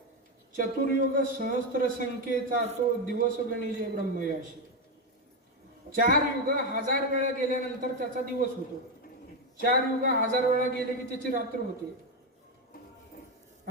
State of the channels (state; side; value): normal; both; correlation 0.08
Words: चतुर्युग सहस्त्र संख्येचा तो दिवस गणिजे ब्रह्मयाशी. 4 युग 1000 वेळा गेल्यानंतर त्याचा दिवस होतो. 4 युग 1000 वेळा गेले की त्याची रात्र होते.